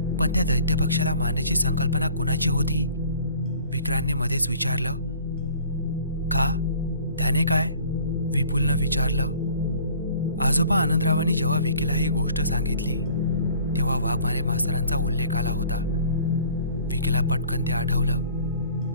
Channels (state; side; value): inverted; both; correlation -0.51